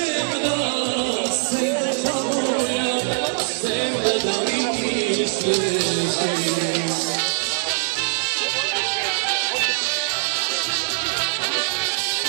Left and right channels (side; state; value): left; silent; 64 dB below the other